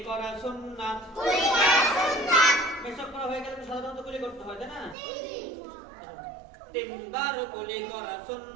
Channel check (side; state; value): left; drops out; at 5.0 s